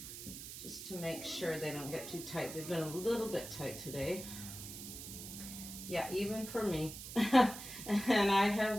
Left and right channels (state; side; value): noise; right; hiss, 10 dB below the sound